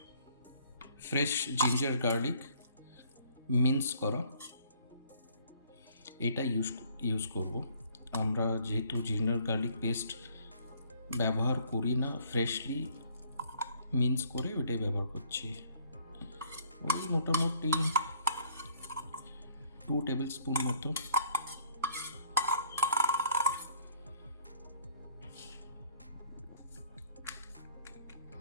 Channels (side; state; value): both; inverted; correlation -0.60